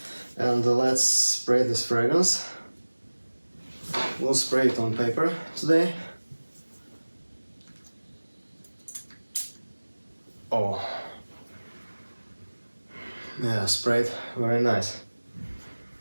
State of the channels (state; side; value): inverted; both; correlation -1.00